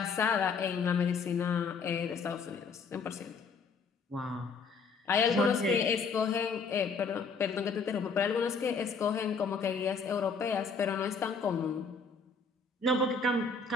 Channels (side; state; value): right; quieter; 4.9 dB